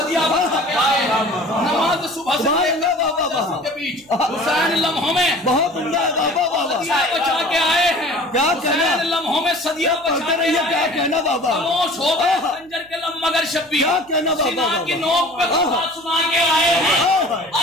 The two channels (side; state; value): right; noise; hum, 29 dB below the sound